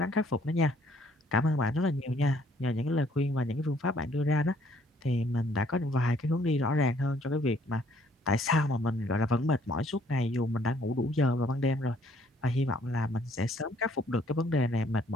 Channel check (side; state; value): both; normal; correlation 0.63